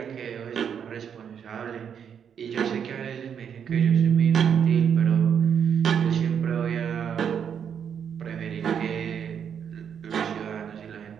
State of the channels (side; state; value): left; quieter; 7.9 dB